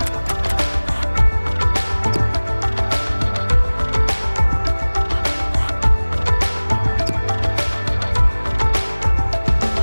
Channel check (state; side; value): inverted; both; correlation -1.00